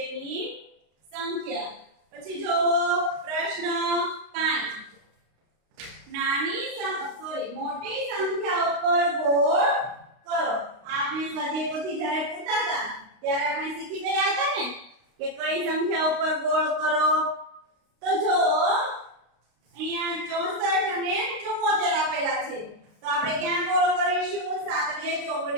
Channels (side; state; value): left; late; 32 ms